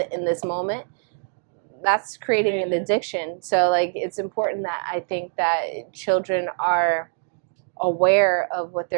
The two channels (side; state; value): left; silent; digital silence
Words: in this moment. That's creating an addiction. So, like, it's important that I think that children are aware of what